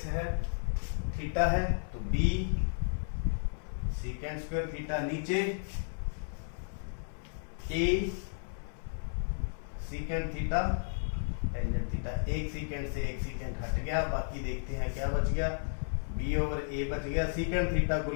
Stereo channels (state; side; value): silent; right; 56 dB below the other